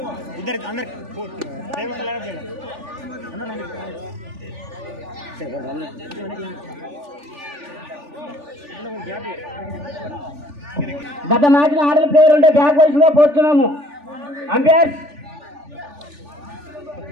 గత మ్యాచ్ లో ఆడిన ప్లేయర్ ఉంటే బ్యాక్ వైస్ గా పోతున్నాము. అంపైర్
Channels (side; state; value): left; late; 3.4 ms